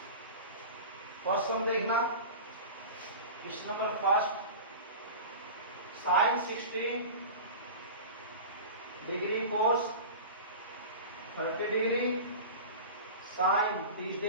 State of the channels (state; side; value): inverted; both; correlation -0.32